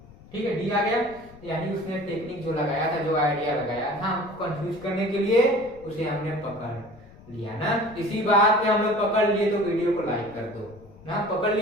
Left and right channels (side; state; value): left; noise; rumble, 22 dB below the sound